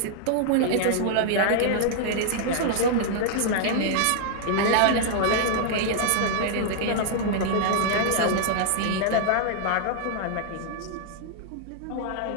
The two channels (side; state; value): both; different; correlation -0.01